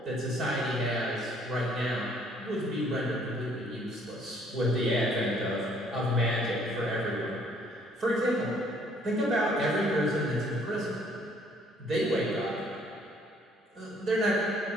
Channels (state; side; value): normal; both; correlation 0.62